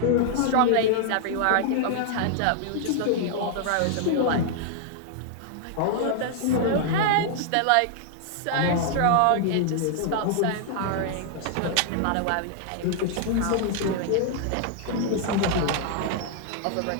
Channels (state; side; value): different; both; correlation 0.00